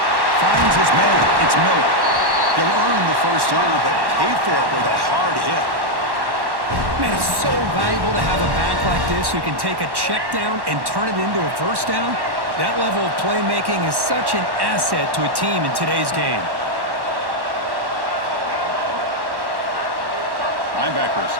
Finds his man. It's Miller. He'll earn the first down, but pay for it with a hard hit. Man, it's so valuable to have a back like this who can take a check down and turn it into a first down. That level of playmaking is such an asset to a team in today's game. Linebackers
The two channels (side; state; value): left; late; 1.1 ms